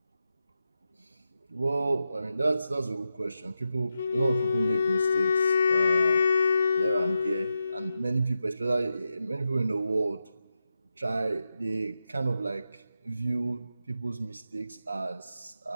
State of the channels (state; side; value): inverted; both; correlation -0.89